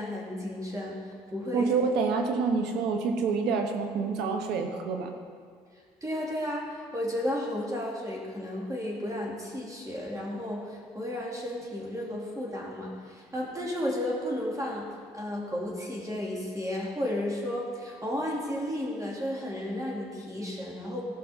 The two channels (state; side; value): normal; both; correlation 0.61